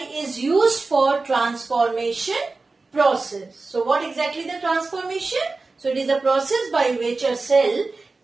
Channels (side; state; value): left; quieter; 3.7 dB